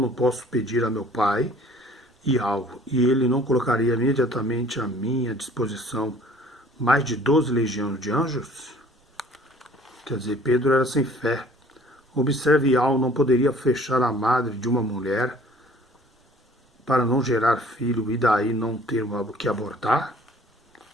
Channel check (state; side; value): normal; both; correlation 0.52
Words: posso pedir a meu pai e algo, e ele não colocaria imediatamente à minha disposição mais de 12 legiões de anjos? Quer dizer, Pedro era sem fé. Observe, Yahweh não poderia fechar a madre de uma mulher para não gerar filho e daí não ter que abortar?